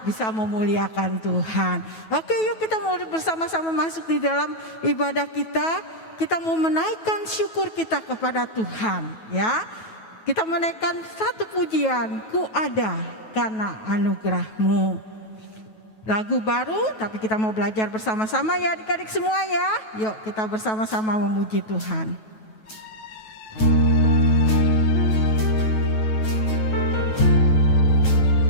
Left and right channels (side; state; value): right; late; 9.2 ms